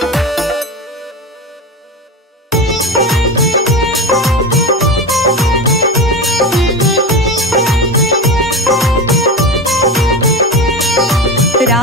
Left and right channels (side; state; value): both; normal; correlation 0.22